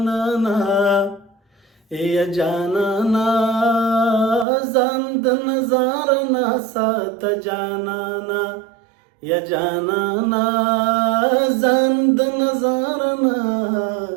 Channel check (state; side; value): drops out; left; at 4.5 s